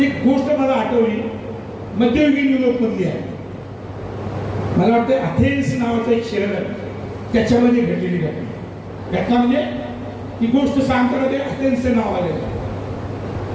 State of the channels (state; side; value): identical; both; correlation 1.00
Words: गोष्ट मला आठवली मध्ययुगीन युरोप मधली आहे. मला वाटतं अथेन्स नावाचं एक शहर आहे, त्याच्यामध्ये घडलेली घटना म्हणजे ही गोष्ट सांगताना ते अथेन्सचं नाव आलेलं आहे.